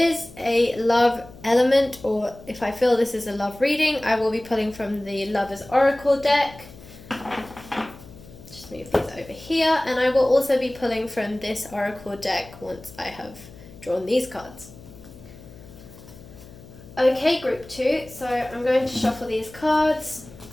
a love element, or if I feel this is a love reading, I will be pulling from the Lover's Oracle deck. Just move these over here, and I will also be pulling from this Oracle deck once I have drawn these cards. Okay, group two, so I'm going to shuffle these cards.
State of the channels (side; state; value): left; noise; hum, 19 dB below the sound